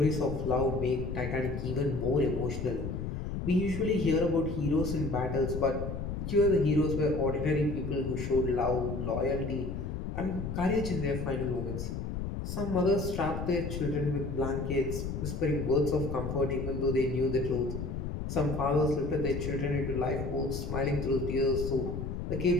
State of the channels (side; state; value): left; noise; rumble, 4 dB below the sound